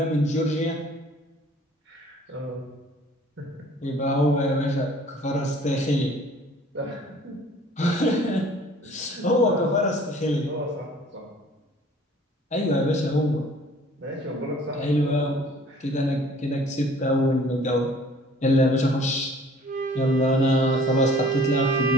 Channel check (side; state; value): both; normal; correlation 0.53